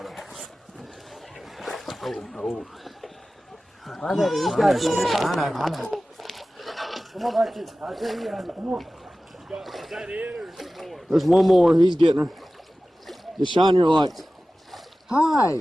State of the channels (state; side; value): normal; both; correlation 0.96